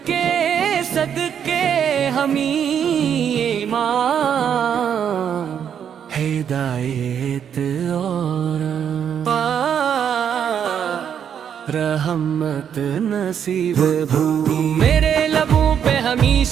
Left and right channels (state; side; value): quieter; left; 8.4 dB